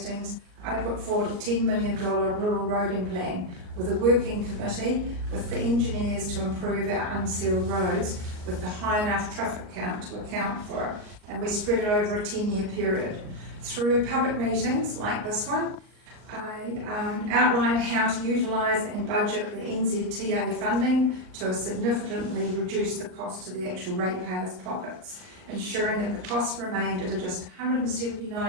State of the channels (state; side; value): late; left; 39 ms